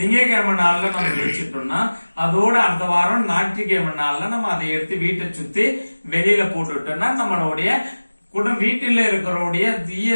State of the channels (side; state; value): both; inverted; correlation -1.00